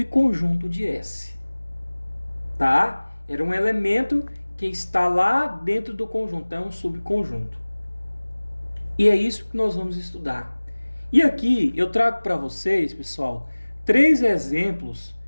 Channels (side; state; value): both; inverted; correlation -1.00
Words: de S. Tá? Era um elemento que está lá dentro do conjunto, é um subconjunto. E é isso que nós vamos estudar. E aqui eu trago para vocês, pessoal, 3 exemplos